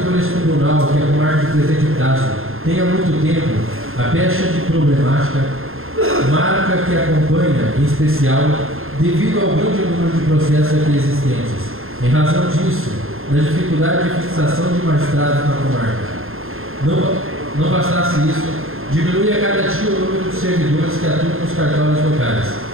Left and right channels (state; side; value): late; left; 0.61 ms